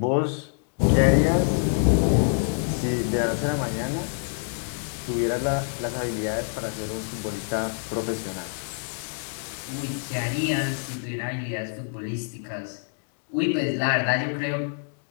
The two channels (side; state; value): right; silent; digital silence